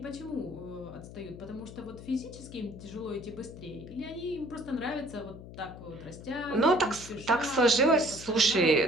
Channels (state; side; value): noise; left; hum, 14 dB below the sound